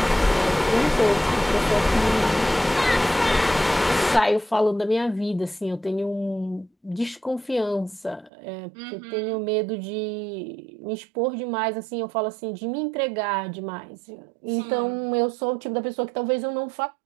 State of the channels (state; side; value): drops out; left; at 8.3 s